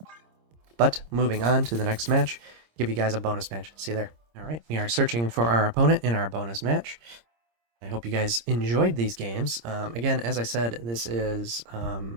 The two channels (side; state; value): left; late; 26 ms